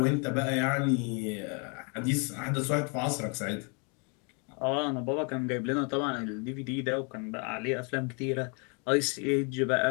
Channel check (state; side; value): quieter; right; 35.3 dB